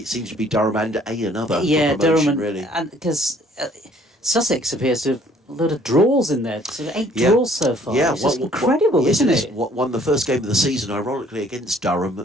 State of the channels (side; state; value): both; normal; correlation 0.59